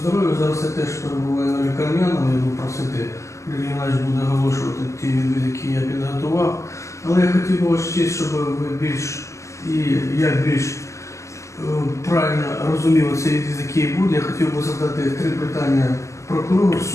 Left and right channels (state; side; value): late; right; 0.14 ms